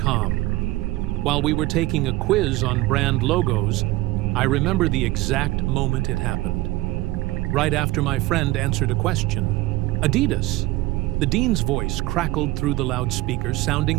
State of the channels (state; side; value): quieter; left; 18.6 dB